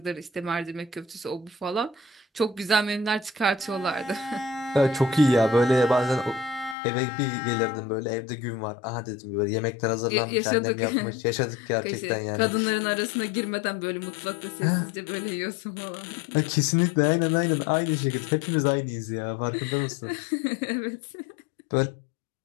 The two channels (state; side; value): drops out; right; at 6.8 s